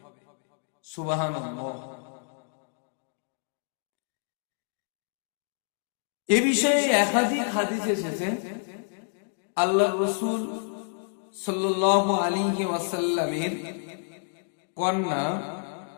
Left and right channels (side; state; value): right; silent; 56 dB below the other